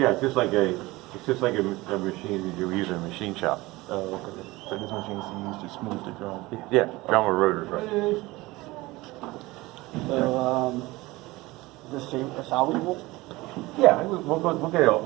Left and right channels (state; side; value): quieter; left; 20.6 dB